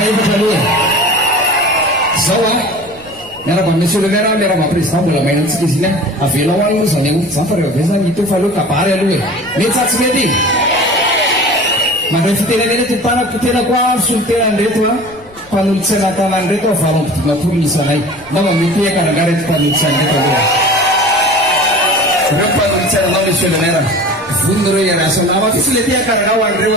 aloha zao a miaraba monsieur le maire miaraba président mbola maina antsika izy iny a avela ho any moa zany aoty zany fa rehefa be zany ito fa aloha kabary aloha e mety sa tsy mety iny mandray fitenenena tetanako tena koa solitenanreto a mpanolo-tsaina tanany reto avarompidimapolo nisanay na mamety ekananga reto mpanolo-tsaina reto aloha reo mpanolo-tsaina anao monsieur le maire vononareo iarasanama fisy le tiakaranga ho an'ireo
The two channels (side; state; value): left; noise; rumble, 26 dB below the sound